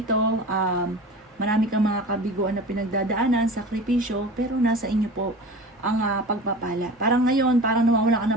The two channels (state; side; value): normal; both; correlation 0.35